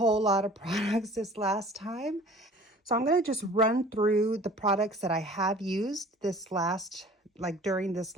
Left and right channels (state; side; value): normal; both; correlation 0.47